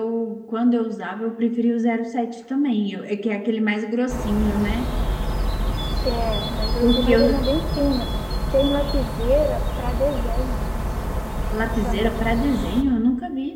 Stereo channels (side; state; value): both; identical; correlation 1.00